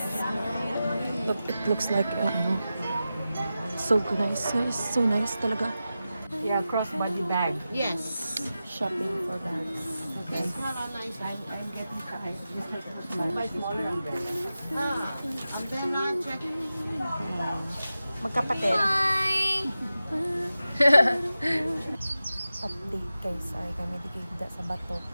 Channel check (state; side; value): inverted; both; correlation -0.93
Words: Look, it looks like so nice guys. So nice talaga. Yeah, crossbody bag. Yes. Shopping for bags. guys. I'm getting tired. My smaller umbrella. I'm then not checking. Magkapatid. Update guys, sorry kami digigda sa bato.